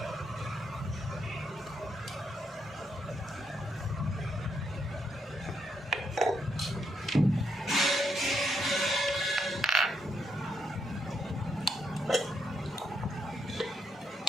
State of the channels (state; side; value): normal; both; correlation 0.79